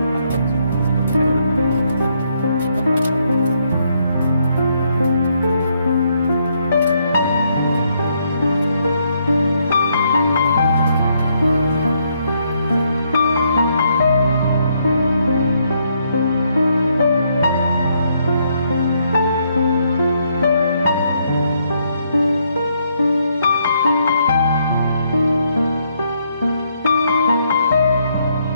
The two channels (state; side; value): inverted; both; correlation -0.73